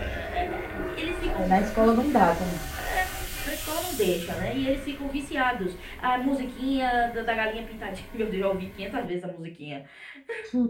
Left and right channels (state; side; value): identical; both; correlation 1.00